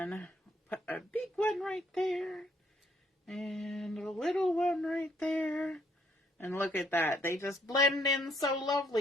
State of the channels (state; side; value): normal; both; correlation 0.69